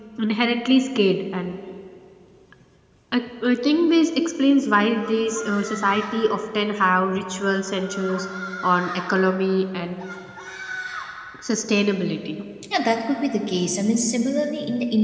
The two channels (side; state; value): both; identical; correlation 1.00